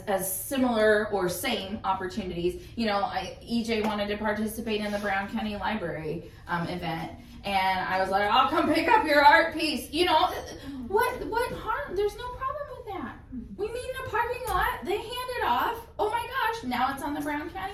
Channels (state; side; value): identical; both; correlation 1.00